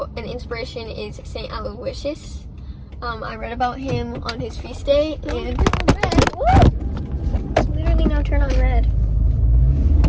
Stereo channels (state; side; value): identical; both; correlation 1.00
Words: an inspiration is Saint Aloysius. I read about him on his feast day, and it's literally now turned on red.